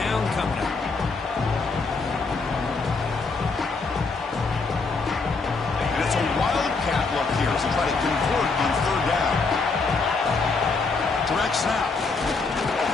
coming up. And it's a wildcat look here as they try to convert on 3rd down. Direct snap.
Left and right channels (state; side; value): quieter; right; 4.2 dB